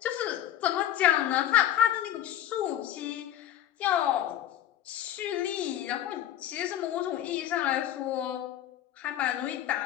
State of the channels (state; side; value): quieter; right; 11.7 dB